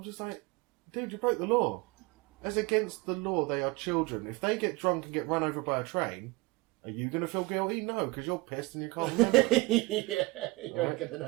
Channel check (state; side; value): quieter; left; 23.6 dB